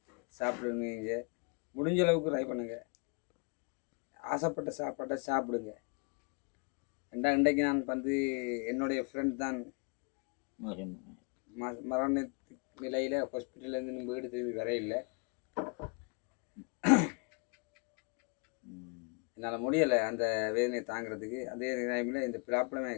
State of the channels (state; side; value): quieter; right; 34.9 dB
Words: சாப்பிடுங்க, முடிஞ்ச அளவுக்கு ட்ரை பண்ணுங்க, ஆசைப்பட்ட சாப்பாட்டை சாப்பிடுங்க. இன்றைக்கு நான் வந்து என்னுடைய ஃப்ரெண்ட் தான் மரண நிலையில் ஹாஸ்பிட்டல்லேருந்து வீடு திரும்பி வர இல்லை. என்னால் முடியலை அந்த வேதனையை தாங்கிறதுக்கு. அதே டைமில் இந்த பிலாப்பழமே